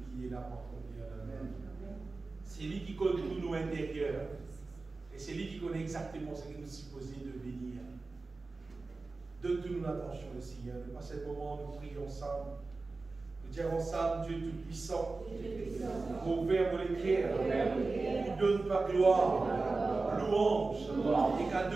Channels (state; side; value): quieter; left; 3.7 dB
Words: qui est là pour accomplir dans nous. C'est lui qui connaît tout nos intérieurs. Et c'est lui qui connaît exactement ce que nous sommes supposés devenir. Donne-nous l'attention, le Seigneur. À ce moment, nous prions ensemble. Nous disons ensemble, Dieu Tout-Puissant, ouvert pour l'écrire, nous donne ta gloire, louange et